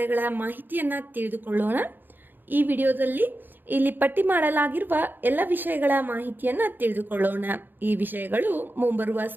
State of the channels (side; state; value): left; late; 0.092 ms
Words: ಮಾಹಿತಿಯನ್ನು ತಿಳಿದುಕೊಳ್ಳೋಣ. ಈ ವಿಡಿಯೋದಲ್ಲಿ ಇಲ್ಲಿ ಪಟ್ಟಿ ಮಾಡಲಾಗಿರುವ ಎಲ್ಲ ವಿಷಯಗಳ ಮಾಹಿತಿಯನ್ನು ತಿಳಿದುಕೊಳ್ಳೋಣ. ಈ ವಿಷಯಗಳು ಮುಂಬರುವ